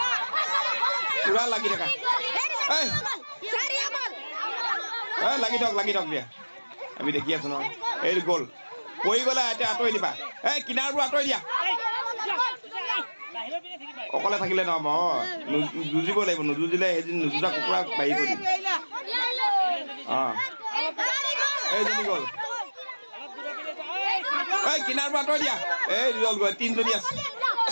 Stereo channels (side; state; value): both; inverted; correlation -1.00